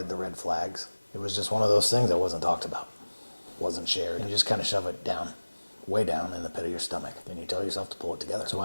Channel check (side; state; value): both; inverted; correlation -1.00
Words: the red flags. It was just one of those things that wasn't talked about, wasn't shared. And you just kind of shove it down, way down in the pit of your stomach. Then you tell yourself to pull it together. So